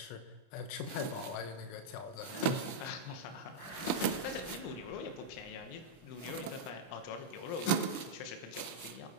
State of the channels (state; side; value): late; right; 30 ms